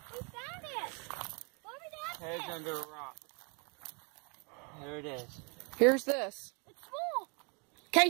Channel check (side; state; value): left; quieter; 33.5 dB